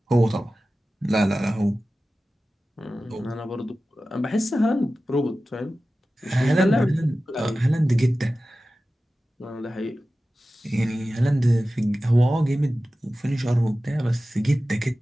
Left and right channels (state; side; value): normal; both; correlation 0.95